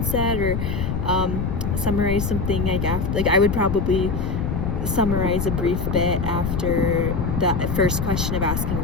set, or summarize something like after, like I would probably summarize a brief bit after that first question of asking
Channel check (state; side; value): noise; left; rumble, 1 dB below the sound